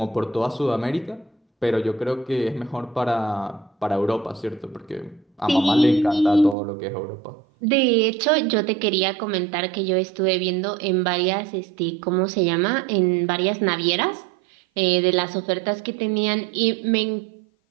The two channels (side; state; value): left; drops out; at 6.6 s